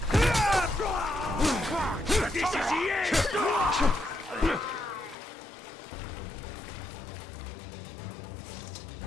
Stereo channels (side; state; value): right; drops out; at 5.2 s